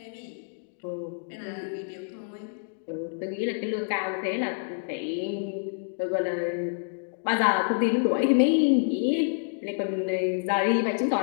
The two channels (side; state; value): right; silent; digital silence